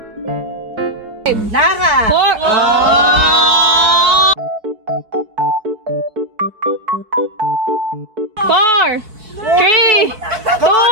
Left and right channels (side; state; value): left; late; 4.6 ms